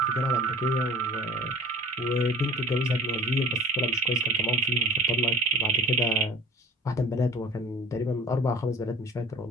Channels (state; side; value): normal; both; correlation 0.46